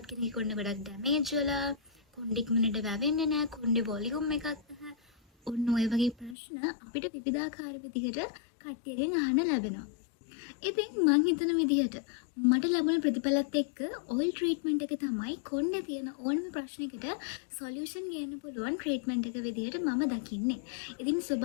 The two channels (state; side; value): drops out; right; at 6.4 s